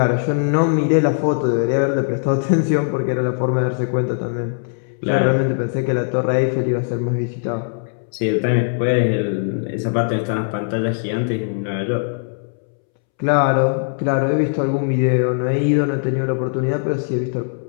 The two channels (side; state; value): right; silent; 66 dB below the other